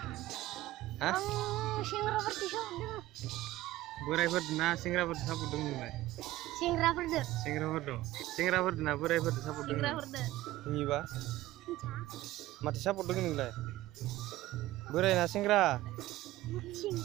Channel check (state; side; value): quieter; left; 16.4 dB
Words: हा? सेंग्राफोरनि सापर्ट दङ। बोरायफोर ना सेंग्राफोर सापर्ट दङ नोंलाय? सेंग्राफोरजों। सेंग्राफोर दं। सेंग्राफोर ना बोरायफोर सापर्ट दङ? सेंग्राफोरजों। नोंनिबा? माथो सापर्ट दङ नोंलाय? बोराय ना सेंग्रा?